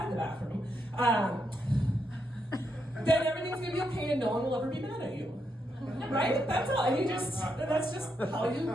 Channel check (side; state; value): both; normal; correlation 0.81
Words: the bathroom. Then everything's gonna be okay and no one will ever be mad at you. Right? That's all. And that's just how you